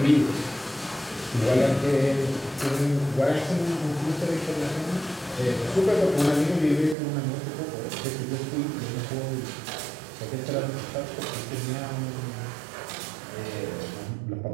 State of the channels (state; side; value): drops out; left; at 7.0 s